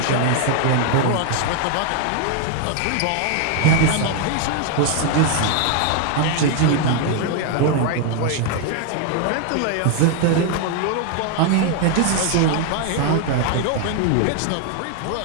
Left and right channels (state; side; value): different; both; correlation 0.01